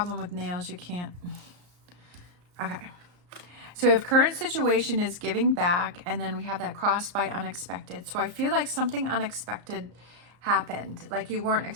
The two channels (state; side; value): late; left; 34 ms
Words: with nails, you can't. Okay. So if current situation is giving back, and then we have that crossed by unexpected. So I feel like something unexpected happened, like you weren't